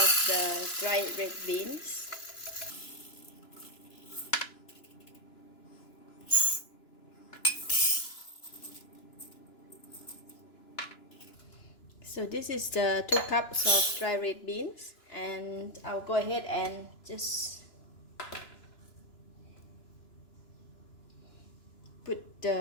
the dried red beans. So this is the 2 cups of dry red beans, and I'll go ahead and just put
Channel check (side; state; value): right; late; 2.9 ms